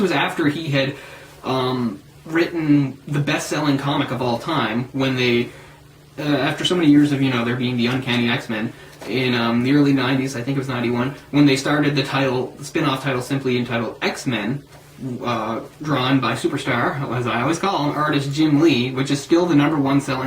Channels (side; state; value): both; identical; correlation 1.00